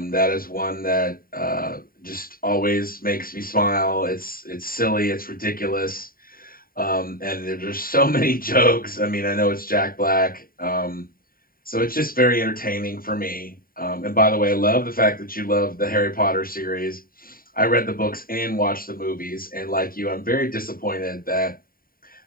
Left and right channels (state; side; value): late; right; 0.42 ms